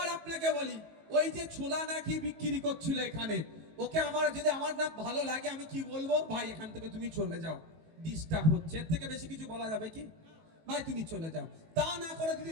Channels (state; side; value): late; left; 19 ms